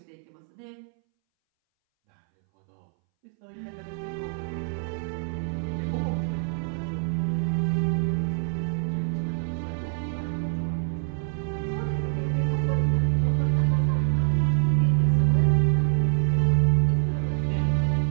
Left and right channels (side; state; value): left; silent; 61 dB below the other